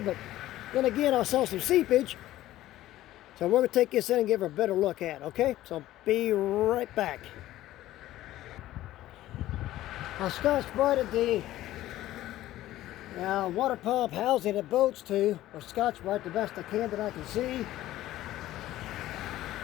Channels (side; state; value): right; quieter; 14.8 dB